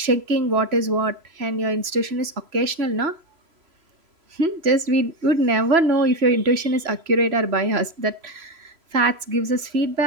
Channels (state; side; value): late; left; 3.0 ms